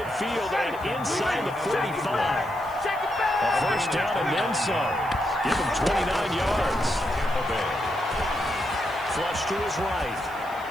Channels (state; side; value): noise; right; hiss, 23 dB below the sound